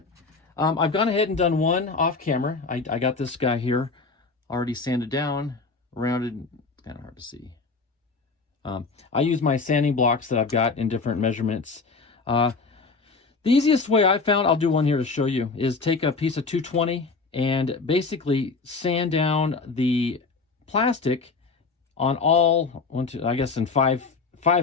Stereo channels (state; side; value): quieter; right; 4.3 dB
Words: I've gone ahead and done one off camera. I got this guy here already sanded down, rounded. It's kind of hard to see. I use my sanding blocks that I've got in different measurements. The easiest way I found, I'll do one here to show you, is take a piece of 220 and basically sand down the plastic on all, I guess in five